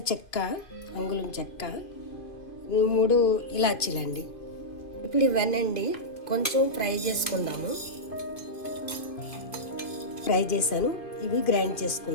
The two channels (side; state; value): right; late; 2.5 ms